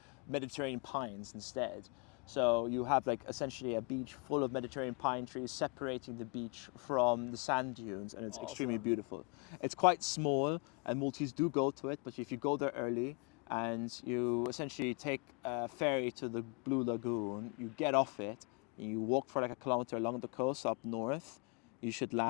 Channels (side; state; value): right; quieter; 33.3 dB